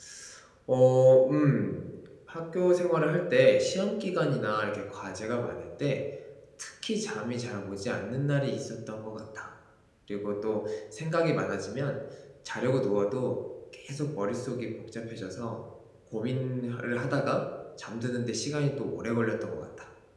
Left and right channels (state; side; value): identical; both; correlation 1.00